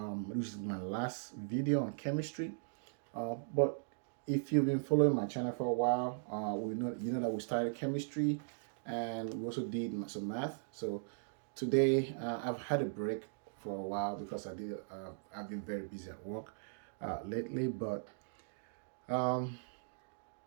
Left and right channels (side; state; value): left; silent; digital silence